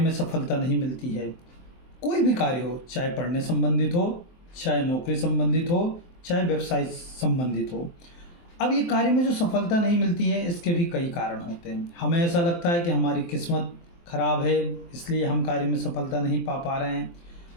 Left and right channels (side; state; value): right; late; 23 ms